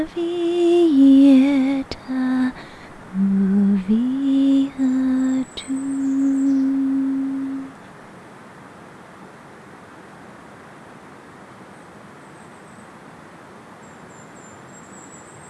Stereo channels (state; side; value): identical; both; correlation 1.00